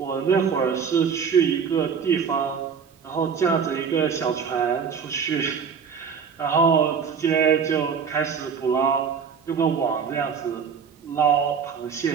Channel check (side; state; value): left; quieter; 6.5 dB